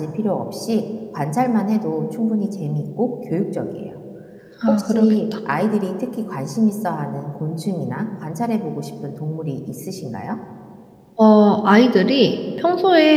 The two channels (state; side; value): identical; both; correlation 1.00